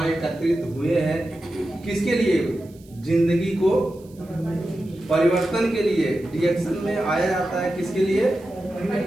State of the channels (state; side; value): noise; right; hiss, 28 dB below the sound